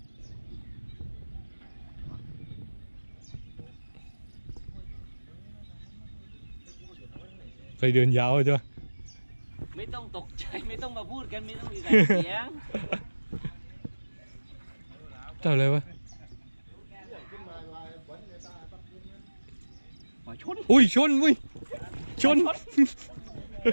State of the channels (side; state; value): both; inverted; correlation -1.00